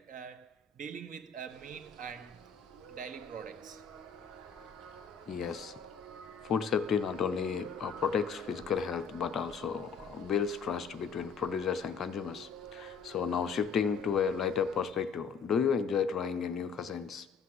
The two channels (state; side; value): quieter; right; 5.8 dB